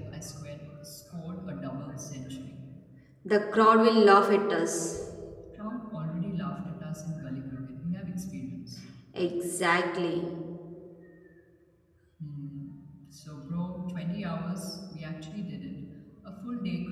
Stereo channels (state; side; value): identical; both; correlation 1.00